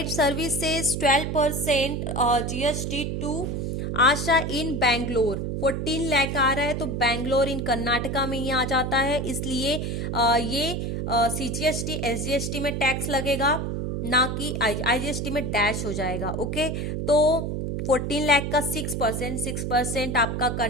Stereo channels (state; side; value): noise; right; hum, 2 dB below the sound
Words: services 12% GST to Asha in Bangalore. 14 lakh आ रहा है तो बैंगलोर इन कर्नाटका में ही आ जाता है, इसलिए ये सीजीएसटी एसजीएसटी में टैक्स लगेगा ना कि आईजीएसटी में डैश हो जाएगा। ओके, तो 14 लाख का 6% आपका